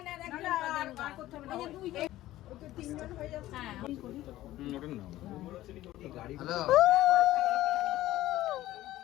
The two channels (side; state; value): right; quieter; 15.3 dB